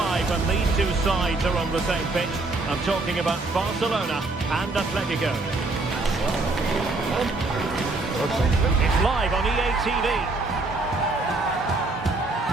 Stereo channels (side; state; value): left; quieter; 3.2 dB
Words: when these two sides are on the same pitch. I'm talking about Barcelona and Atletico. It's live on EA TV.